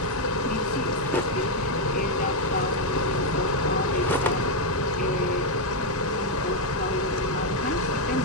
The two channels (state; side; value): normal; both; correlation 0.01